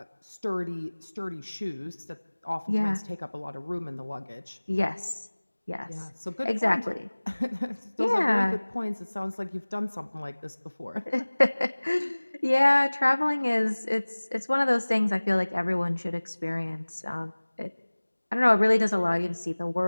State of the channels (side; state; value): both; inverted; correlation -1.00